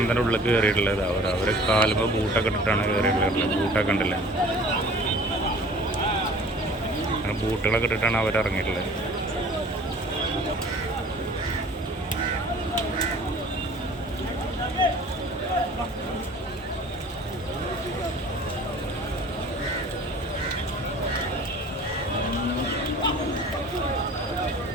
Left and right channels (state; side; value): normal; both; correlation 0.47